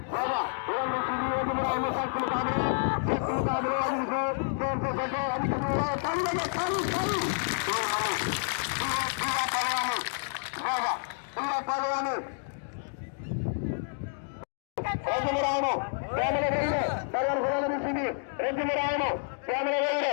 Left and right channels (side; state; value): right; silent; digital silence